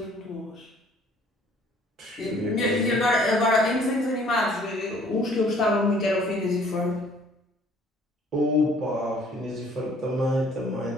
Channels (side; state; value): both; normal; correlation 0.57